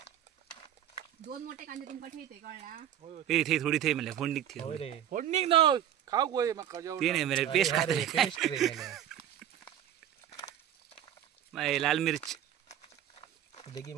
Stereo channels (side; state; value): left; quieter; 10.7 dB